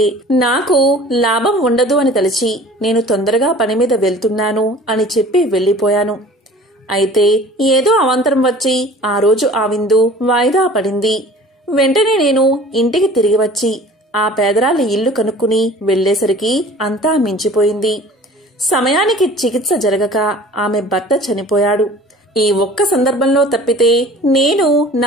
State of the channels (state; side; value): normal; both; correlation 0.45